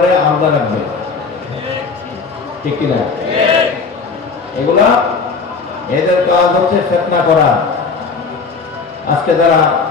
আলাদা রাখবে। ঠিক কিনা? এগুলা এদের কাজ হচ্ছে ফিতনা করা। আজকে যারা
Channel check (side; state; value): right; quieter; 4.8 dB